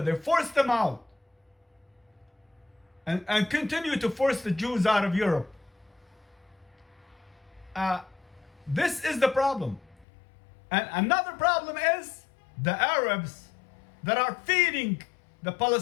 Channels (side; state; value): right; drops out; at 10.1 s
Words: they forced them out. And continue to force the Jews out of Europe. This is the problem. And another problem is the Arabs that are feeding the